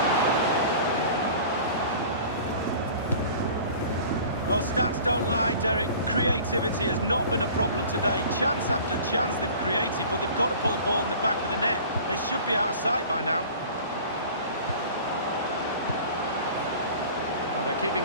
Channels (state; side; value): inverted; both; correlation -0.43